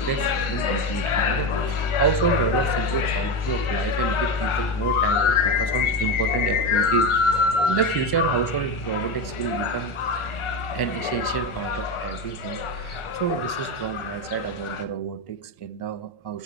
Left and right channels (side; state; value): right; late; 1.1 ms